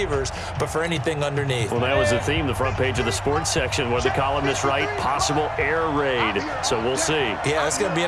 but for anything underneath. Well, that was the theme, the front page of the sports section, where the columnists write possible air raid. So we'll see. Yeah, it's going to be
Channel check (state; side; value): identical; both; correlation 1.00